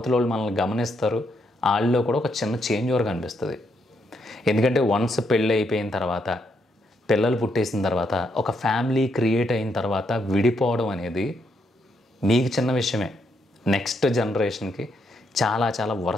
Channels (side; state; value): both; normal; correlation 0.77